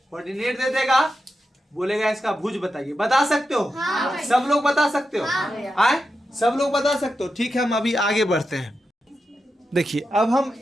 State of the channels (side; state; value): both; normal; correlation 0.89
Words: कोऑर्डिनेट दे देगा, बोलेगा इसका भुज बताइए। बता सकते हो? सब लोग बता सकते हो? आए? सब लोग बता सकते हो? ठीक है, हम अभी आगे बढ़ते हैं। देखिए अब हम